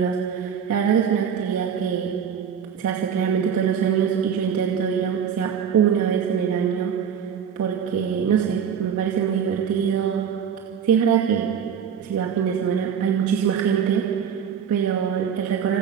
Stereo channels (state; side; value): quieter; left; 7.8 dB